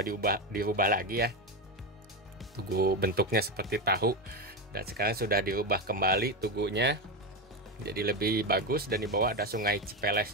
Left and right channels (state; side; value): normal; both; correlation 0.14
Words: dirubah lagi ya. Tugu bentuknya seperti tahu, dan sekarang sudah dirubah kembali tugunya jadi lebih bagus. Dan di bawah ada Sungai